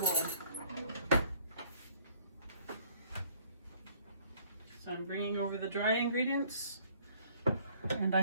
So I'm bringing over the dry ingredients, and I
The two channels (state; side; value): inverted; both; correlation -0.58